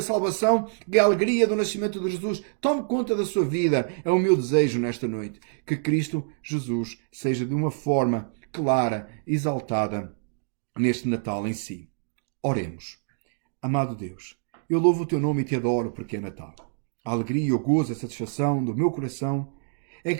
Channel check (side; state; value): left; silent; digital silence